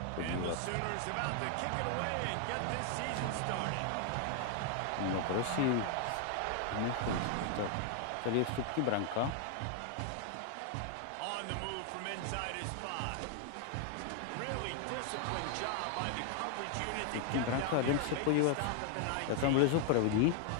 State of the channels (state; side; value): different; both; correlation 0.00